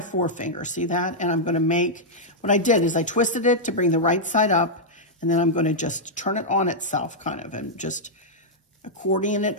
forefinger, see that? And I'm gonna make, what I did is I twisted it to bring the right side up, and then I'm gonna just turn it on itself kind of, and just accordion it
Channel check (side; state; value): both; normal; correlation -0.06